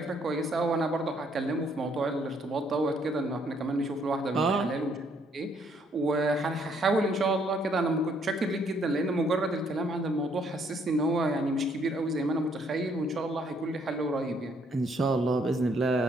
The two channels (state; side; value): normal; both; correlation 0.68